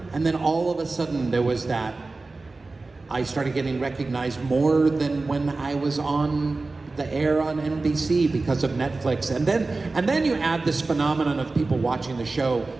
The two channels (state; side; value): quieter; left; 3.5 dB